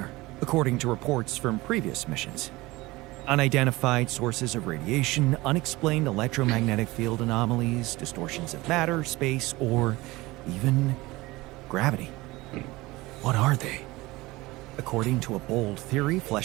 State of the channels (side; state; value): left; quieter; 20.6 dB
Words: according to reports from previous missions. Unidentified sources of radiation, unexplained electromagnetic field anomalies, distortions of matter, space, or even gravity. What are they? According to a bold theory